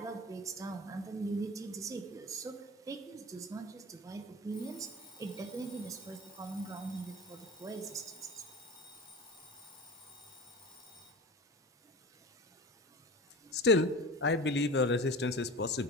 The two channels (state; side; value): normal; both; correlation 0.33